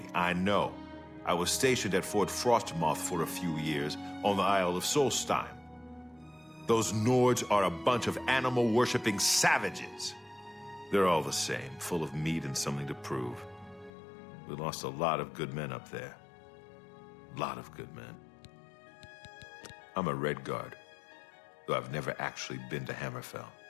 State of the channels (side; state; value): right; drops out; at 13.9 s